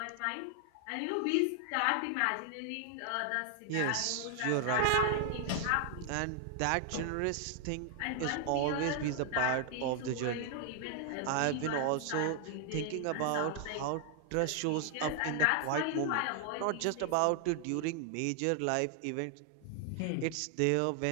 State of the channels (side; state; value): both; different; correlation 0.00